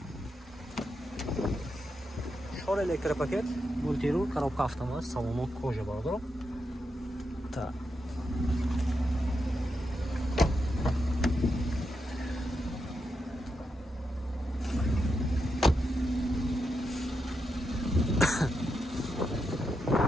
Шор электропакет, мультирул, коробка автомат, салон кожа бардорум. Так.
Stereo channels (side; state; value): both; normal; correlation 0.84